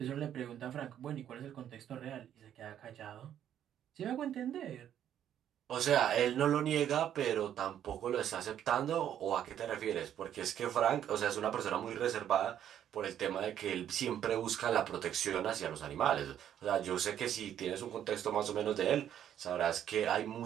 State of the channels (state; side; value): quieter; left; 10.3 dB